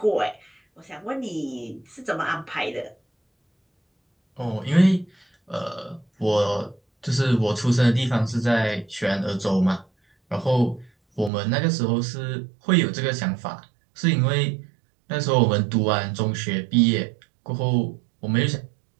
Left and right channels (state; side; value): drops out; left; at 11.3 s